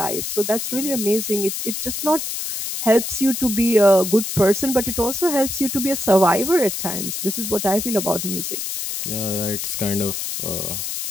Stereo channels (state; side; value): noise; left; hiss, 4 dB below the sound